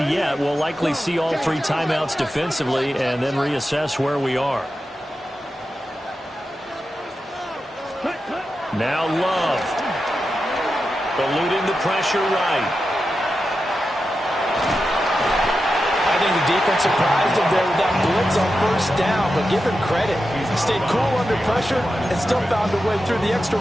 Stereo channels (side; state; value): both; normal; correlation 0.90